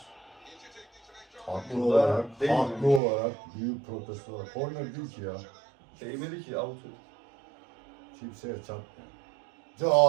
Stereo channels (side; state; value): left; drops out; at 3.0 s